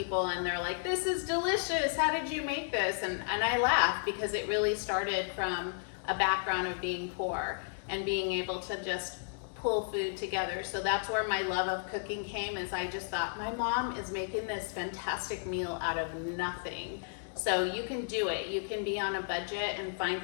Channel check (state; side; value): silent; right; digital silence